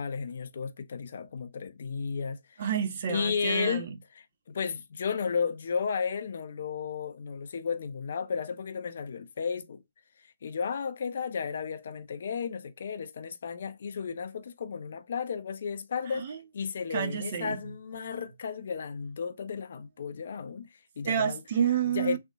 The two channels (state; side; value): inverted; both; correlation -0.70